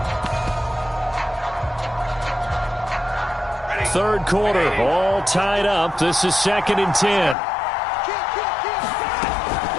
Third quarter, all tied up. This is 2nd and 10.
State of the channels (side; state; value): right; drops out; at 7.4 s